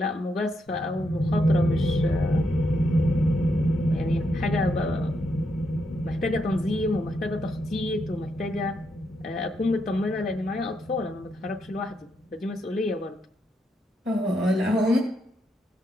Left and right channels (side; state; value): both; normal; correlation 0.80